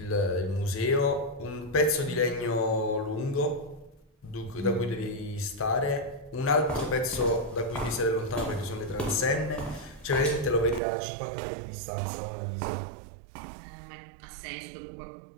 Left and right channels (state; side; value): drops out; left; at 10.8 s